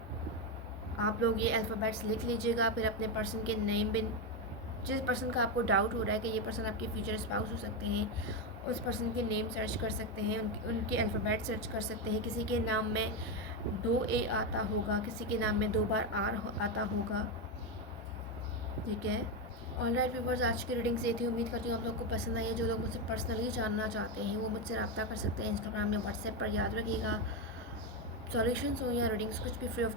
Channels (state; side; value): normal; both; correlation 0.09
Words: आप लोग ये अल्फ़ाबेट्स लिख लीजिएगा, फिर अपने पर्सन के नेम भी, जिस पर्सन का आपको डाउट हो रहा है कि ये पर्सन आपके फ्यूचर स्पाउस हो सकते हैं, उस पर्सन के नेम सर्च कर सकते हैं, उनके अल्फ़ाबेट सर्च कर सकते हैं। किसी के नाम में 2 A आता होगा, किसी के नाम में 2 बार R आता होगा, ठीक है। ऑलराइट व्यूअर्स, आज की रीडिंग से थी। उम्मीद करती हूँ आप लोग को पसंद आई है। जो लोग मुझसे पर्सनली जानना चाहते हैं वो मुझसे रब्ता कर सकते हैं इंस्टाग्राम में, व्हाट्सएप पर। याद रखिएगा, सॉल्यूशंस हो या रीडिंग्स कुछ भी फ्री